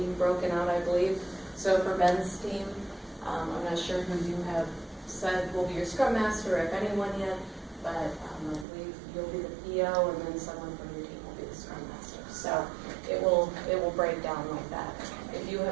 broken out, I believe. So for Ben's team, I'm not sure who you have said will be your Scrum Master, if anyone yet, but I believe you'll be the PO and then someone from your team will be the Scrum Master. So it will break down like that. If you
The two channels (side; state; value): left; drops out; at 8.7 s